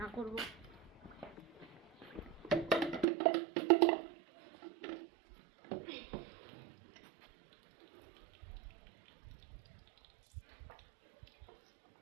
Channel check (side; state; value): left; drops out; at 3.1 s